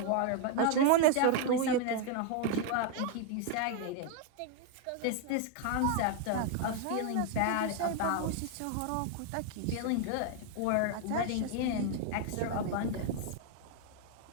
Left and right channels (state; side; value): different; both; correlation 0.01